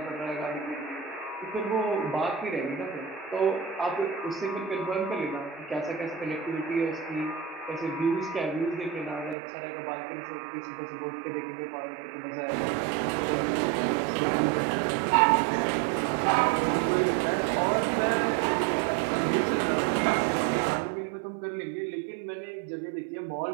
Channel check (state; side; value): drops out; left; at 9.3 s